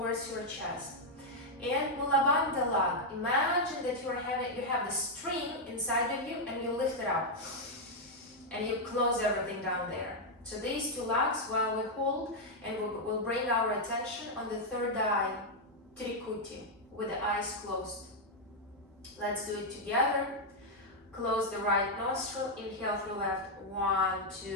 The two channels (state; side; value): normal; both; correlation -0.01